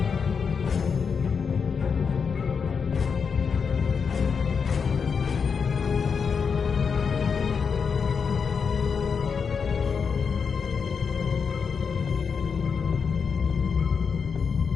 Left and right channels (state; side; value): quieter; right; 6.0 dB